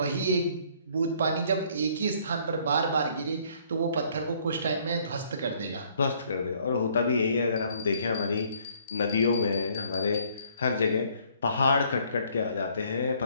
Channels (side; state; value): both; inverted; correlation -0.62